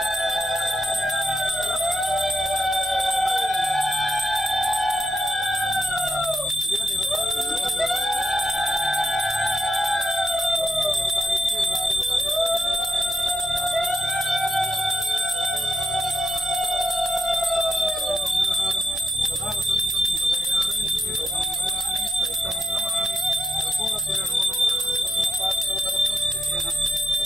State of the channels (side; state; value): both; normal; correlation 0.83